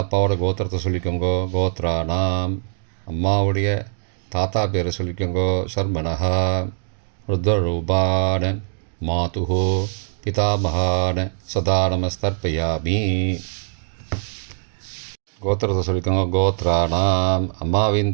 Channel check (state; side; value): silent; left; digital silence